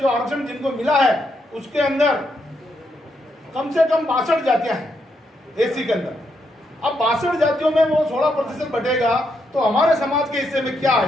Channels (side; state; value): both; normal; correlation 0.79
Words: जो आरक्षण जिनको मिला है उसके अंदर कम से कम 62 जातियां हैं एससी के अंदर। अब 62 जातियों में वो 16% बटेगा तो हमारे समाज के हिस्से में क्या